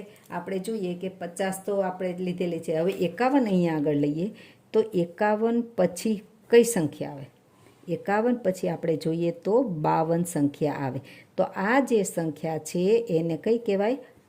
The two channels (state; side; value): identical; both; correlation 1.00